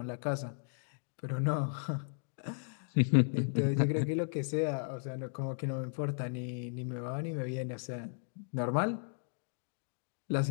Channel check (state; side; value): silent; right; digital silence